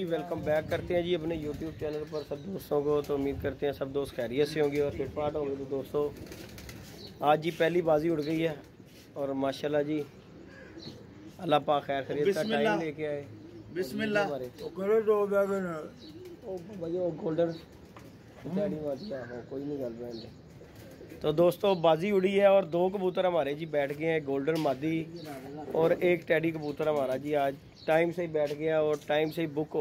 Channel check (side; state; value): both; identical; correlation 1.00